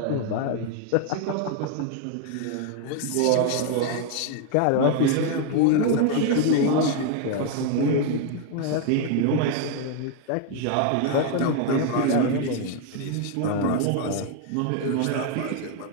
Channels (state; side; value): different; both; correlation 0.00